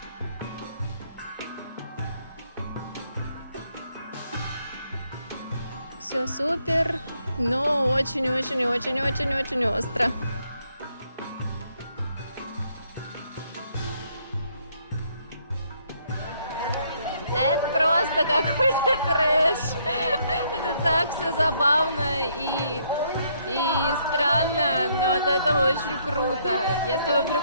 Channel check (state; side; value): inverted; both; correlation -0.70